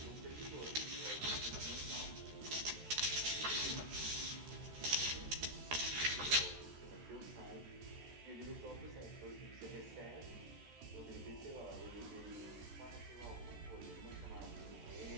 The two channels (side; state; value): left; late; 14 ms